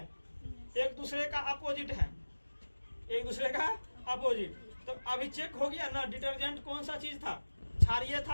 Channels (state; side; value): inverted; both; correlation -1.00